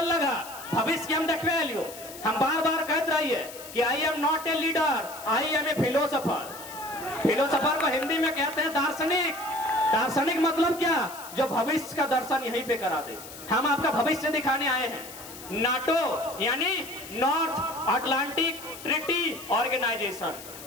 लगा, भविष्य के हम देखवे लियो। हम बार बार कहते रहिए कि I am not a leader, I am a philosopher. Philosopher को हिंदी में कहते हैं दार्शनिक। दार्शनिक मतलब क्या, जो भविष्य का दर्शन यहीं पे करा दे। हम आपका भविष्य दिखाने आए हैं। नाटो यानी नॉर्थ अटलांटिक ट्रीटी ऑर्गेनाइजेशन,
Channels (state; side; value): noise; left; hiss, 15 dB below the sound